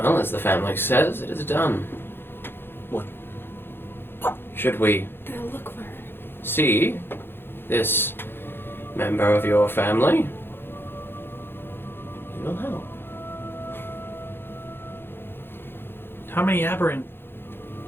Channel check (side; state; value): right; late; 0.10 ms